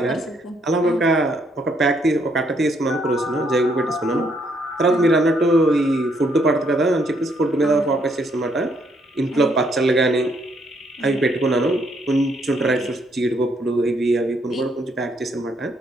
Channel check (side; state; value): both; normal; correlation 0.71